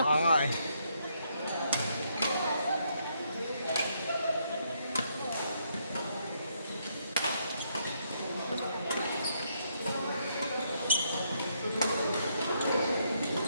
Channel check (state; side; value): inverted; both; correlation -0.75